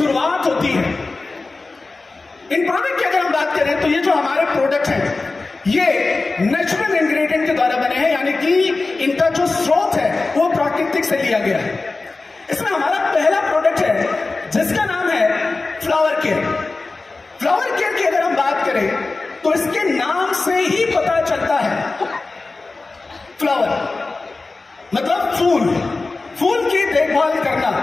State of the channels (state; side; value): quieter; right; 3.6 dB